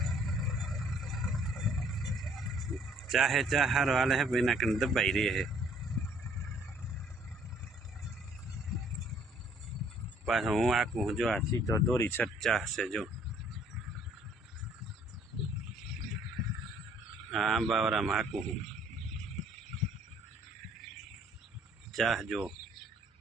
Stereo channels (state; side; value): normal; both; correlation 0.61